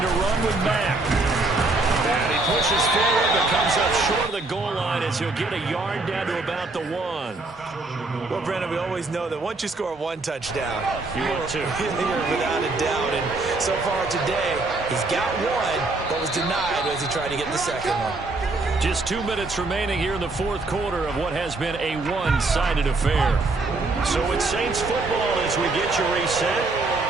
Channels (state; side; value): quieter; left; 3.3 dB